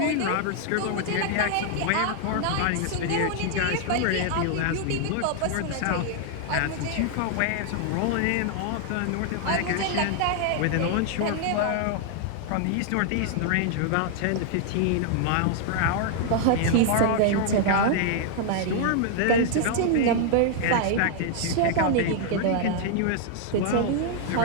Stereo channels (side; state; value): both; different; correlation 0.00